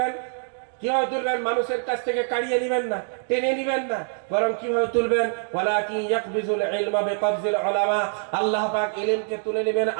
কিভাবে তুলবেন? মানুষের কাছ থেকে কাড়িয়ে নেবেন না, টেনে নেবেন না, বরং কিভাবে তুলবেন? ওয়ালাকিন ইয়াকবিজুল ইলমা বিকবজিল উলামা। আল্লাহ পাক ইলমকে তুলে নেবেন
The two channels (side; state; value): left; silent; digital silence